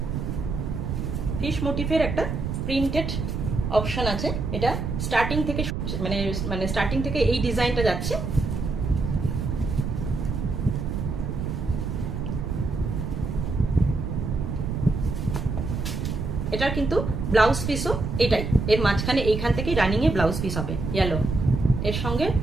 ফিশ মোটিভের একটা প্রিন্টেড অপশন আছে, এটা স্টার্টিং থেকে মানে স্টার্টিং থেকে এই ডিজাইনটা যাচ্ছে। এটার কিন্তু ব্লাউজ পিসও এটাই, এর মাঝখানে এইখান থেকেই রানিং এ ব্লাউজ পিস হবে ইয়েলো, এর সঙ্গে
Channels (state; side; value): noise; right; rumble, 3 dB below the sound